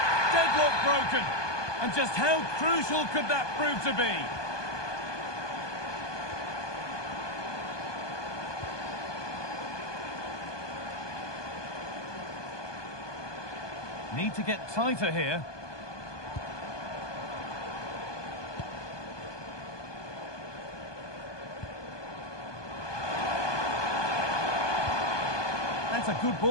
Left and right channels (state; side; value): late; right; 1.2 ms